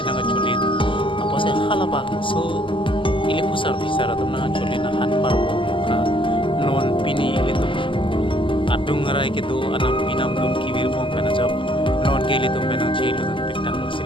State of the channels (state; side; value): late; right; 0.25 ms